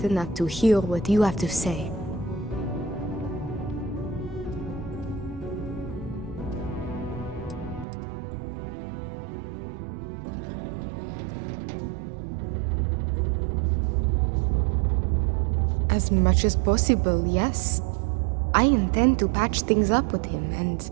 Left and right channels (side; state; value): left; drops out; at 7.9 s